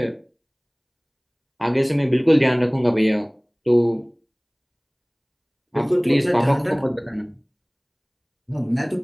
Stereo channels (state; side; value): identical; both; correlation 1.00